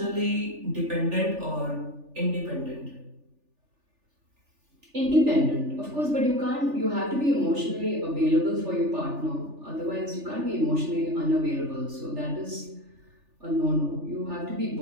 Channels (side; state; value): left; late; 3.4 ms